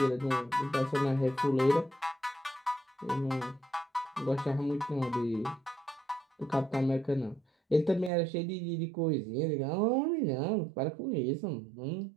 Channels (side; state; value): left; drops out; at 8.1 s